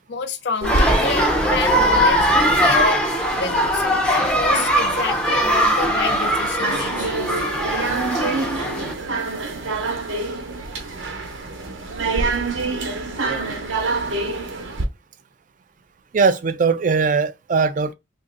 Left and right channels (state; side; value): normal; both; correlation 0.22